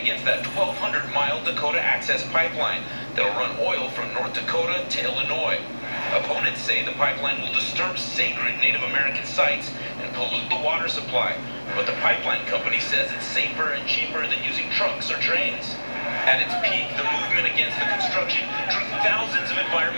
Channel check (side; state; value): both; inverted; correlation -1.00